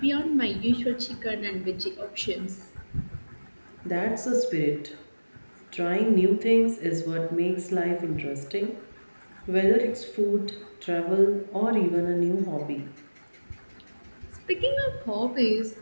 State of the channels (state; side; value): inverted; both; correlation -1.00